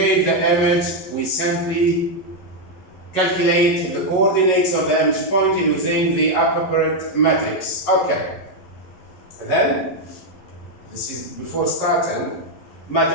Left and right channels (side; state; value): right; late; 11 ms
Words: the image, we simply calculate the coordinates of the image point using the appropriate matrix. Okay. Then, this is before starting,